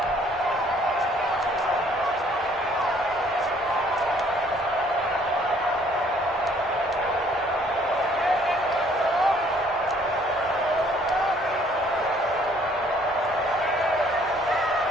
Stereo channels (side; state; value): both; normal; correlation 0.60